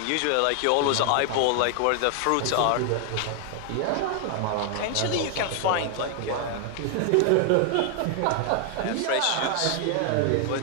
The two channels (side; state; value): both; different; correlation 0.00